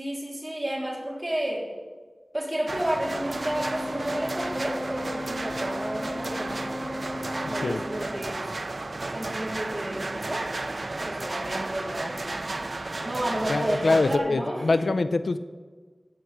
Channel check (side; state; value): both; normal; correlation 0.96